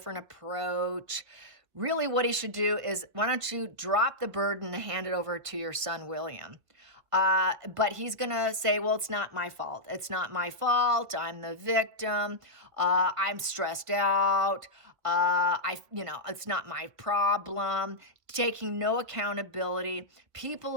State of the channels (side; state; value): left; late; 1.9 ms